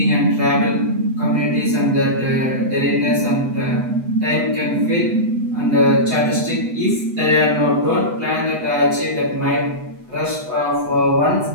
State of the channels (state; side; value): late; left; 8.0 ms